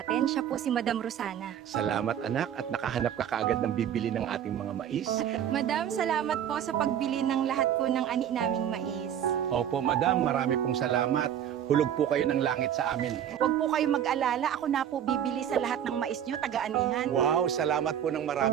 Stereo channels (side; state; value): left; quieter; 9.8 dB